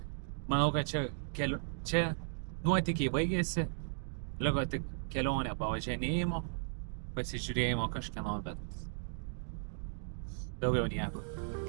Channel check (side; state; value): left; silent; digital silence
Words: Manau, kad čia nuotykiai baigėsi. Liko tik kelionė pavažinėjimo, pasižiūrėjimo kažkieno, bet daugiau nieko.